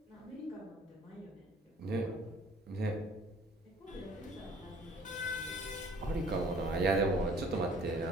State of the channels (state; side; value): normal; both; correlation 0.54